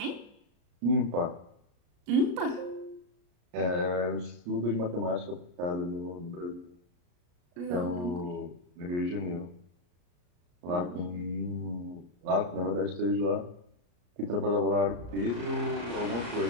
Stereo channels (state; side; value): late; left; 34 ms